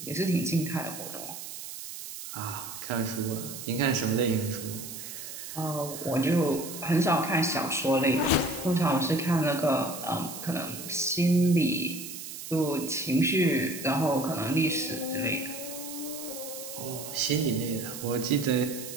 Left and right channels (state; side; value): noise; right; hiss, 10 dB below the sound